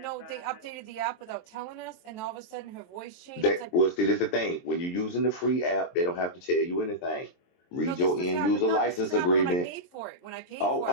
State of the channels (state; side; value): late; right; 23 ms